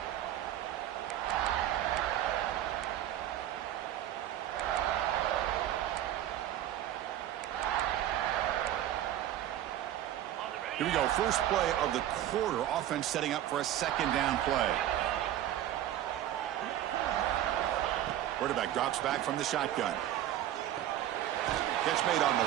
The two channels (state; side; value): quieter; left; 12.3 dB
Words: Here we go, first play of the quarter. Offense setting up for a second down play. Quarterback drops back from the shotgun. Catch made on